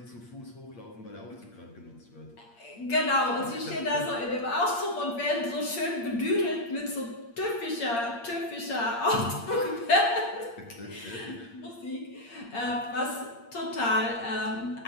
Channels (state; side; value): late; right; 8.6 ms